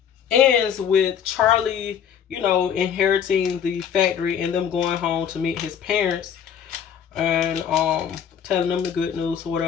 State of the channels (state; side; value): quieter; right; 8.3 dB